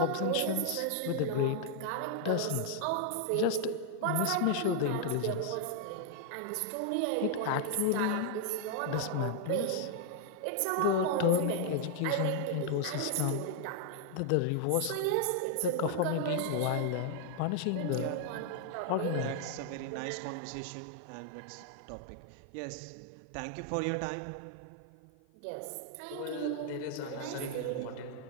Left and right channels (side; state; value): both; different; correlation 0.00